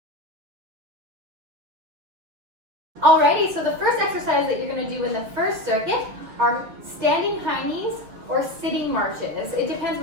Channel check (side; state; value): left; late; 6.8 ms